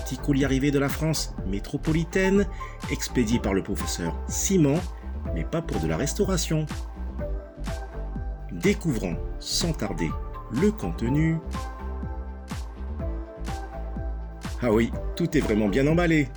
colis arrivé de la France métropolitaine, expédié par le professeur Simon, mais pas pour de la restauration. Découvrons sans tarder le contenu. Ah oui, tout est vraiment bien emballé.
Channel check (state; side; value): identical; both; correlation 1.00